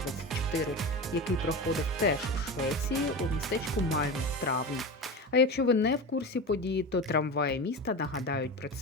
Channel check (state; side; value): normal; both; correlation 0.26